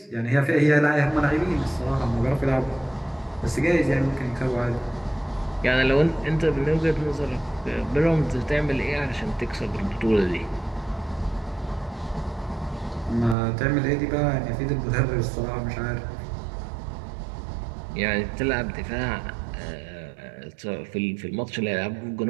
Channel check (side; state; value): left; drops out; at 13.4 s